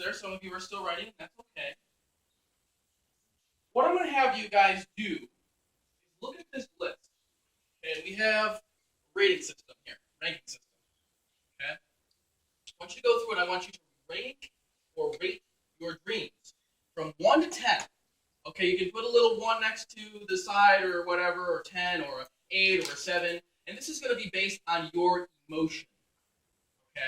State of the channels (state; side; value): identical; both; correlation 1.00